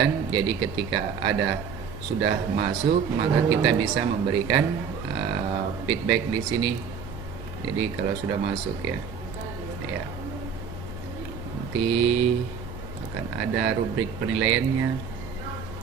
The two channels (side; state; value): left; quieter; 6.7 dB